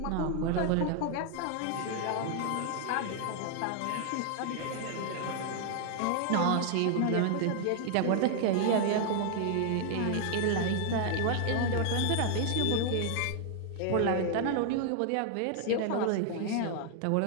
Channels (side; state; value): both; different; correlation 0.00